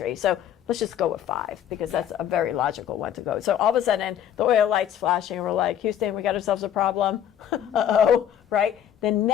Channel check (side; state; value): right; quieter; 10.0 dB